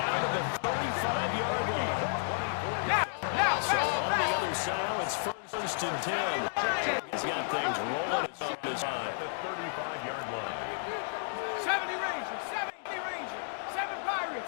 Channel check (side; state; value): right; silent; digital silence